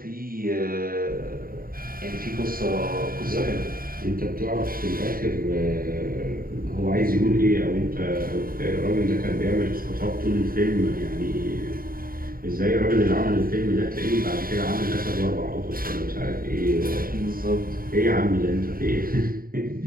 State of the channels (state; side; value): late; left; 0.42 ms